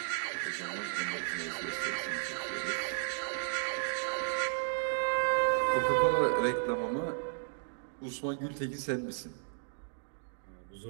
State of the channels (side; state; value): left; silent; digital silence